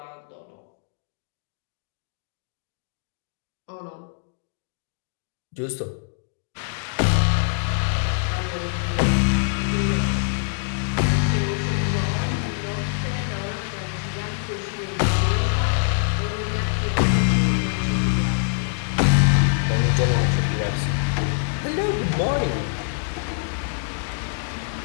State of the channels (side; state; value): right; silent; digital silence